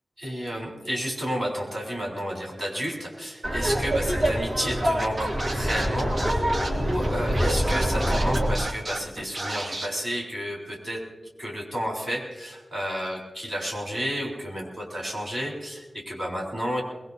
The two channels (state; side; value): normal; both; correlation 0.95